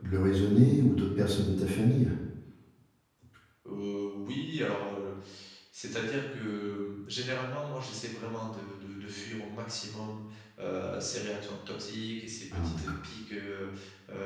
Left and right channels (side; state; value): both; identical; correlation 1.00